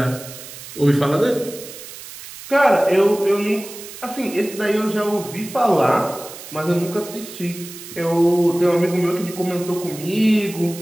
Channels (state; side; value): noise; right; hiss, 14 dB below the sound